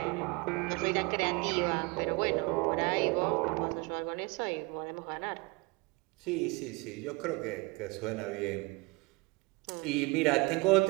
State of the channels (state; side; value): quieter; left; 26.7 dB